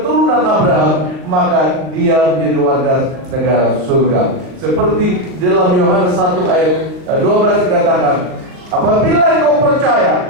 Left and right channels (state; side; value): late; left; 39 ms